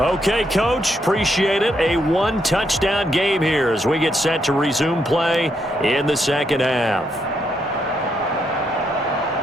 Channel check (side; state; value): both; normal; correlation 0.77